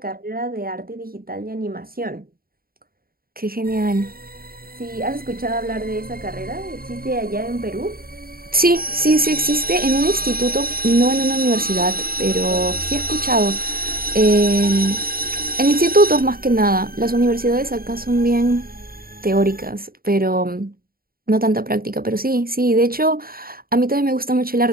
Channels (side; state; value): left; late; 0.43 ms